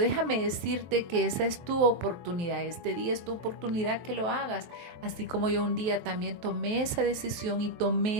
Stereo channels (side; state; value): left; late; 23 ms